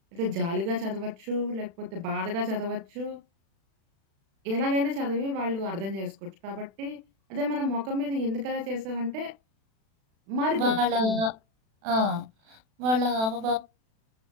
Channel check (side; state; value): left; late; 36 ms